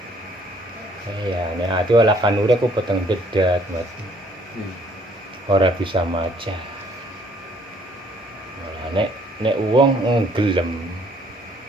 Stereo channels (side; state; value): both; normal; correlation 0.62